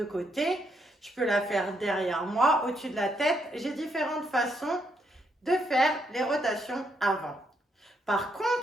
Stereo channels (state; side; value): normal; both; correlation 0.76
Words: côté. Je peux la faire derrière moi, au-dessus de la tête. J'ai différentes façons de faire les rotations avant. Par